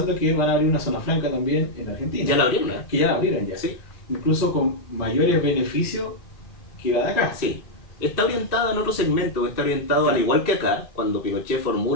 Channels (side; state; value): right; late; 2.4 ms